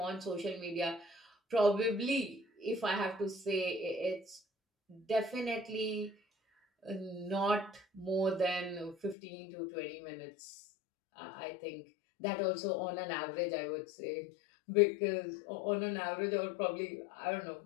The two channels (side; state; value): right; drops out; at 9.2 s